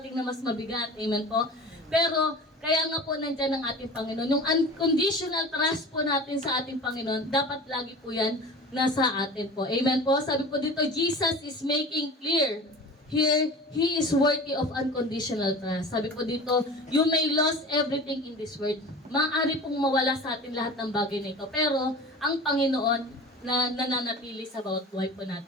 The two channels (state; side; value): normal; both; correlation 0.37